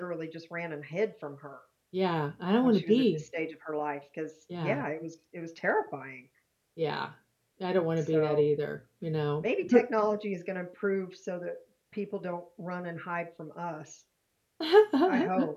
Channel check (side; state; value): both; identical; correlation 1.00